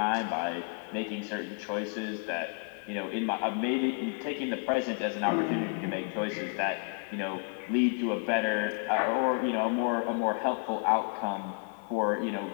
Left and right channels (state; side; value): quieter; right; 37.8 dB